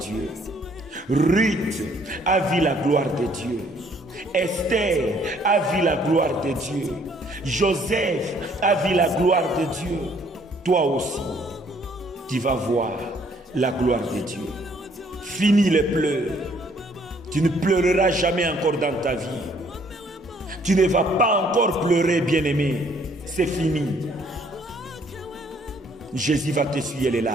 Ruth a vu la gloire de Dieu. Esther a vu la gloire de Dieu. Joseph a vu la gloire de Dieu. Toi aussi, tu vas voir la gloire de Dieu. Fini les pleurs. Tu ne pleureras jamais encore dans ta vie. Tu ne vas pas encore pleurer, bien-aimé. C'est fini. Jésus va t'essuyer les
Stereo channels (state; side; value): normal; both; correlation 0.63